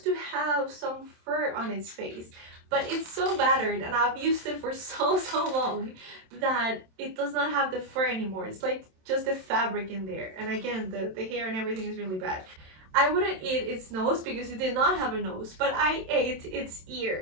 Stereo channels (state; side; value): late; left; 27 ms